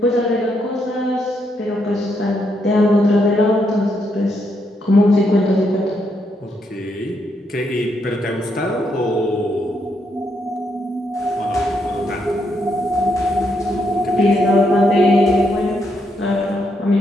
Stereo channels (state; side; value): normal; both; correlation 0.78